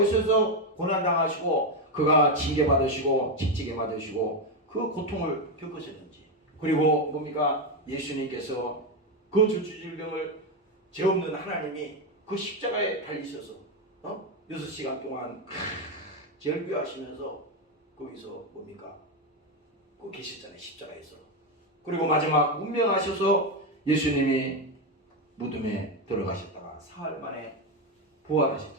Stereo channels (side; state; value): both; normal; correlation 0.08